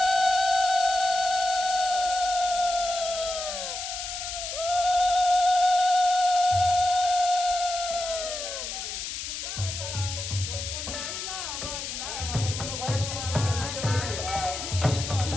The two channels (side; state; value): left; noise; hiss, 6 dB below the sound